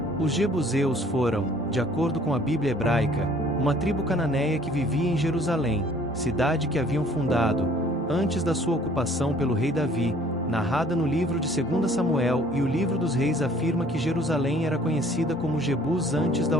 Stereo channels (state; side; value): normal; both; correlation 0.56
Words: Os jebuseus foram, de acordo com a Bíblia hebraica, uma tribo cananeia que vivia em Jerusalém, cidade que haviam fundado, antes da sua ocupação pelo rei Davi, narrada no livro de 2 Samuel, e o livro dos reis afirma que Jerusalém era conhecida como Jebus antes da